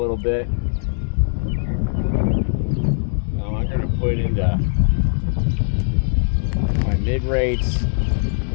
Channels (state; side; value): silent; right; 65 dB below the other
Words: bit. Now I'm going to put into my mid rates,